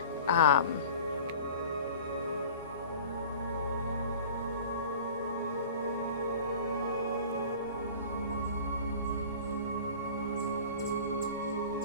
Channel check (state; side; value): inverted; both; correlation -0.41